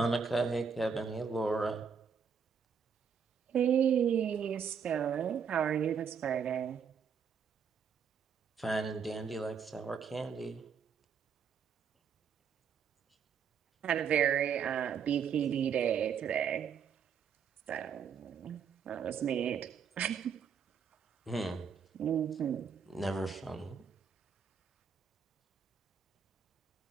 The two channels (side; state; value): left; quieter; 6.6 dB